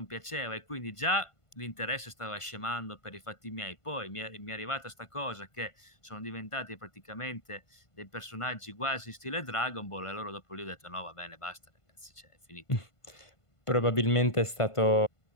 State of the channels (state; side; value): late; right; 1.5 ms